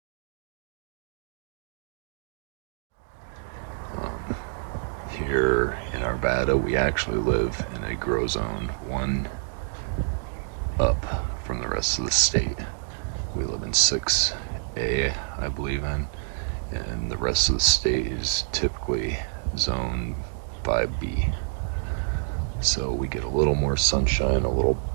Here in Arvada, we actually live in a grow zone, one up from the rest of the state. We live in 6A, I believe in, and the rest of the state is typically zone 5B. So we get a little more sunshine, a little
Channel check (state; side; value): silent; left; digital silence